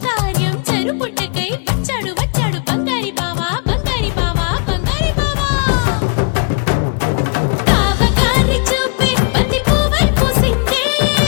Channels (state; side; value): quieter; right; 38.1 dB